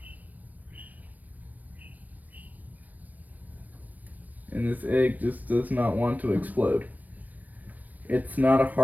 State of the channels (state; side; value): late; left; 0.082 ms